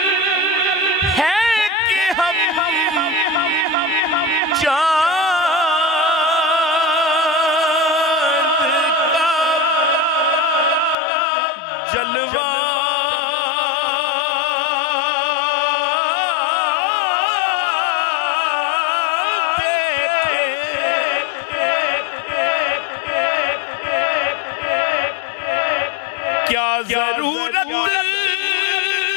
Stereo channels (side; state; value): right; drops out; at 11.0 s